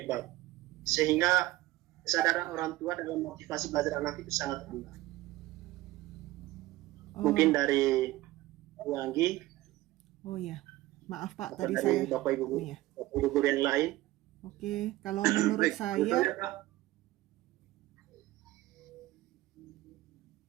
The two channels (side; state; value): left; quieter; 17.5 dB